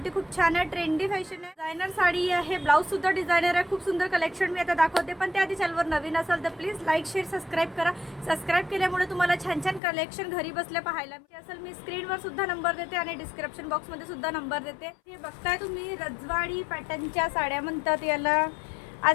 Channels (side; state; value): right; drops out; at 9.8 s